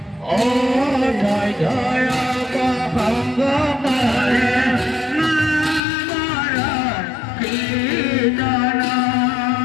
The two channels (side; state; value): right; drops out; at 5.8 s